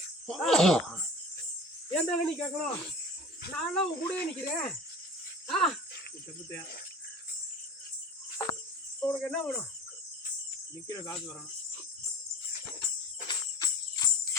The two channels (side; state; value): both; normal; correlation 0.40